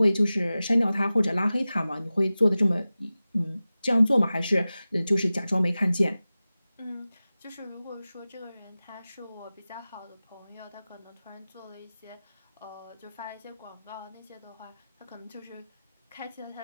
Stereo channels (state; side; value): inverted; both; correlation -0.96